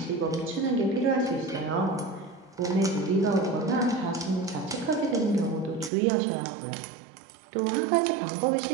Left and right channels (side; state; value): left; drops out; at 5.9 s